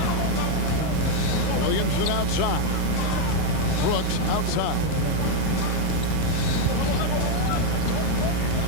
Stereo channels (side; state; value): both; different; correlation 0.02